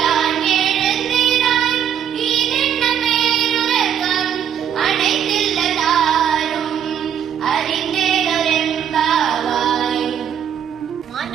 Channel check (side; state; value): left; quieter; 9.0 dB